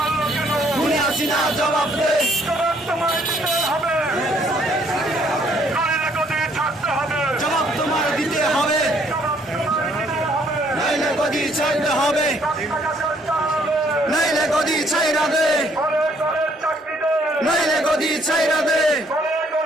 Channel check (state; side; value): normal; both; correlation 0.66